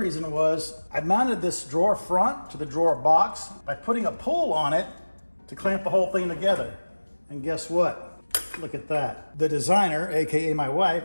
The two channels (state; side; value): inverted; both; correlation -1.00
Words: was I mounted this drawer front to the drawer box by putting a pull on it to clamp the whole thing together. And guess what? Look at that. The designer, AKA my wife,